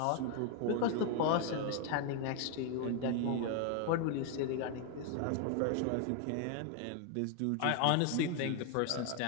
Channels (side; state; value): both; different; correlation 0.00